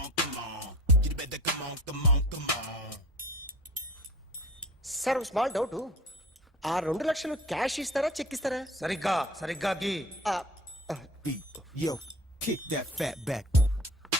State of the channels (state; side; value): normal; both; correlation 0.41